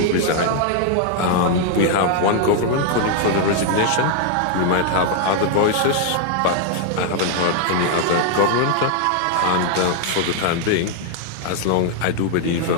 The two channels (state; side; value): different; both; correlation 0.00